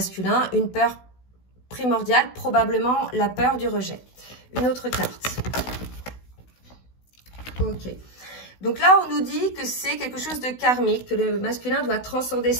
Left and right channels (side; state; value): right; late; 16 ms